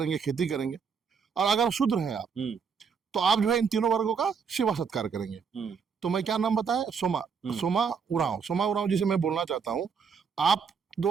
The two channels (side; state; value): left; quieter; 6.2 dB